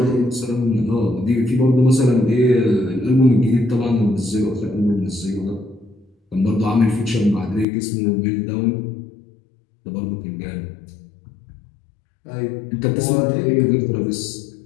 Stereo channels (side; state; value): right; drops out; at 7.7 s